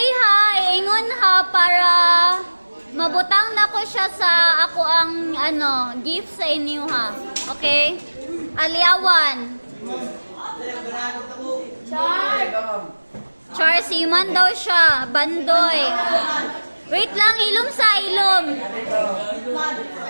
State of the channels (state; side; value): inverted; both; correlation -1.00